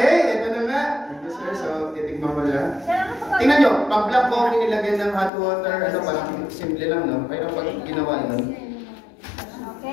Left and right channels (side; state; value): right; drops out; at 5.3 s